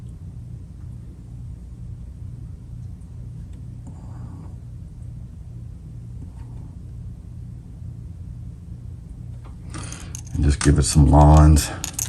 Just give it some lines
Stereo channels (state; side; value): identical; both; correlation 1.00